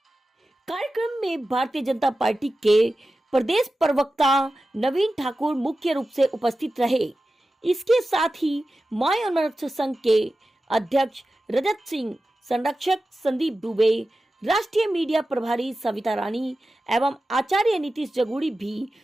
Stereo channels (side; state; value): both; normal; correlation 0.93